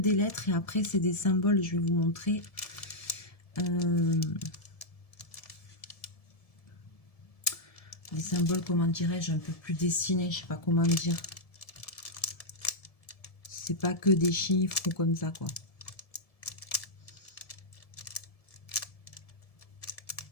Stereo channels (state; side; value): late; right; 1.7 ms